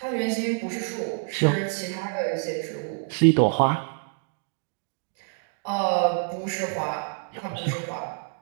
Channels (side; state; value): left; silent; 60 dB below the other